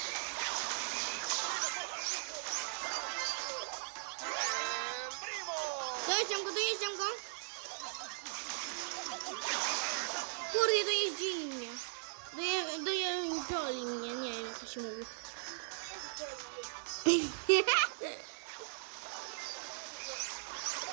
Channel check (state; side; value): silent; left; digital silence